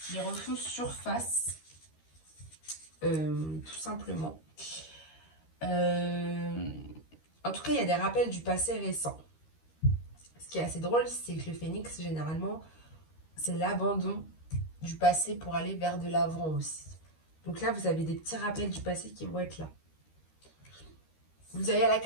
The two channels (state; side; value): late; right; 13 ms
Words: refont surface, tout simplement. En tout cas, il y a des rappels du passé récent. Ce qui est assez drôle, c'est que le phénix, généralement, c'est l'abandon du passé pour aller vers de l'avant aussi. Donc là, vous avez des petits rappels du passé qui vont être là. Vous avez la